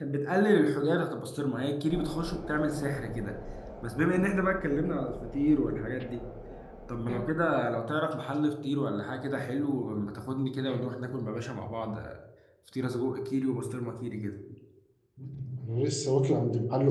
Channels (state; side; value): identical; both; correlation 1.00